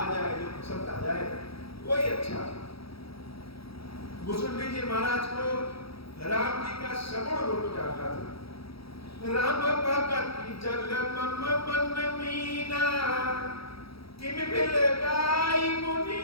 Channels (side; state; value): right; late; 0.76 ms